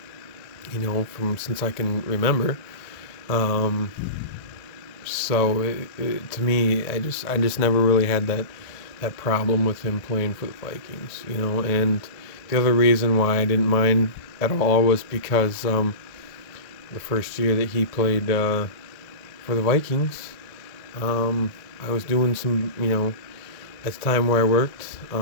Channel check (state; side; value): late; right; 1.7 ms